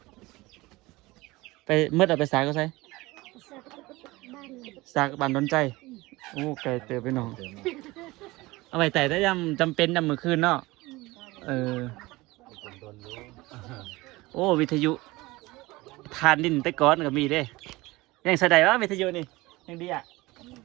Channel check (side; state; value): left; quieter; 20.9 dB